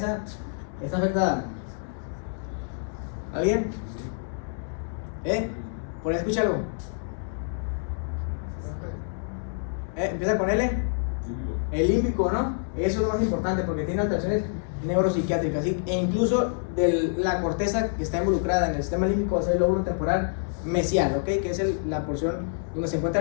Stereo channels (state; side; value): silent; right; digital silence